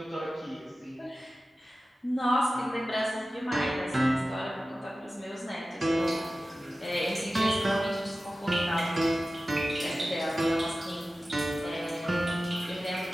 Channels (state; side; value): normal; both; correlation 0.95